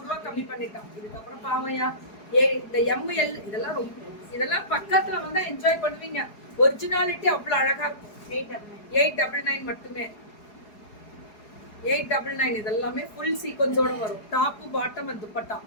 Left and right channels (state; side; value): late; right; 4.8 ms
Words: ரூபாய் கம்மி பண்ணிட்டான். இதுக்கு அப்புறம் பாவையா இந்த எம்எல் இதெல்லாம் பக்கத்துல வந்து என்ஜாய் பண்ணுவீங்க. ஒரிஜினாலிட்டி அவ்வளவு அழகா இருக்கும். 899 மட்டுமே 899 இதெல்லாமே ஃபுல் சீக்வன்ஸோட வரும். டாப் பாட்டம் அண்ட் துப்பட்டா